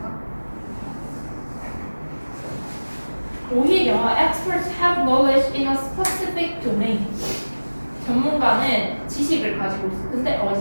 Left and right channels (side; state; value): both; inverted; correlation -1.00